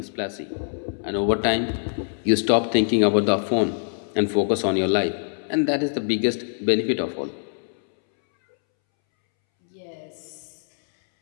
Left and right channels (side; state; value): right; silent; 63 dB below the other